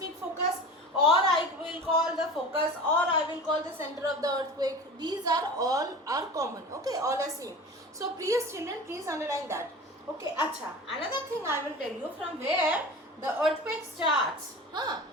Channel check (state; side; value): normal; both; correlation 0.35